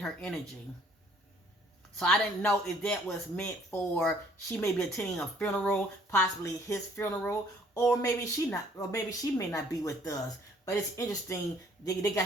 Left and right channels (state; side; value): normal; both; correlation 0.59